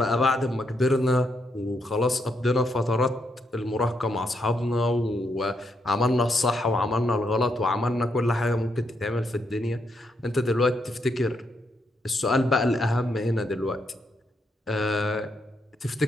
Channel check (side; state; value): both; normal; correlation 0.79